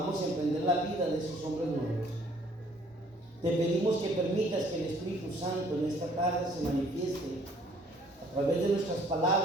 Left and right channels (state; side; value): normal; both; correlation 0.59